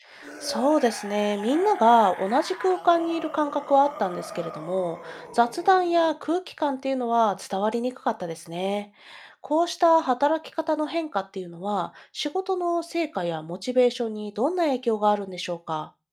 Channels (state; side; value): identical; both; correlation 1.00